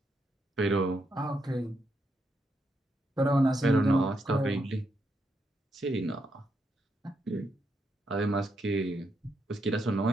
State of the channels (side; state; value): both; normal; correlation 0.80